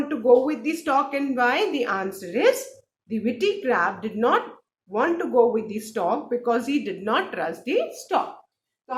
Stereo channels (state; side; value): identical; both; correlation 1.00